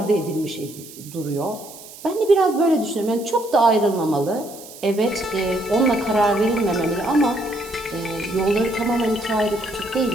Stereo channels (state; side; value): noise; right; hiss, 17 dB below the sound